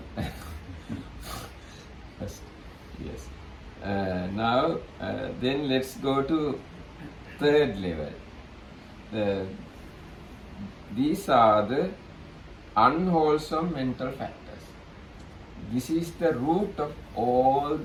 First, yes. Now, then let's go to third level. These are the unwholesome mental factors. This is the root of all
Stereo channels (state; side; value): identical; both; correlation 1.00